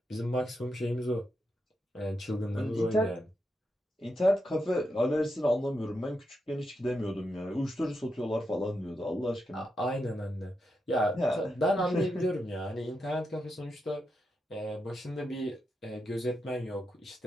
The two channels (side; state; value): both; normal; correlation 0.85